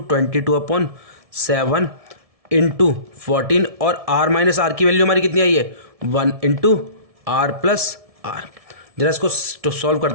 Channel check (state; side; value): late; left; 1.7 ms